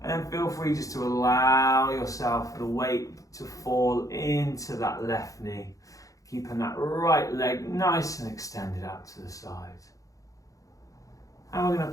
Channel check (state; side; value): late; right; 0.16 ms